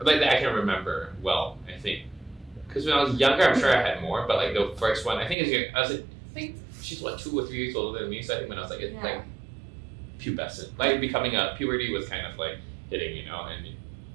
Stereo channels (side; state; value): left; drops out; at 5.4 s